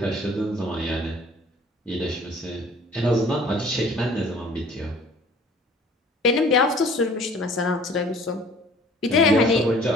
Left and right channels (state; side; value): normal; both; correlation 0.51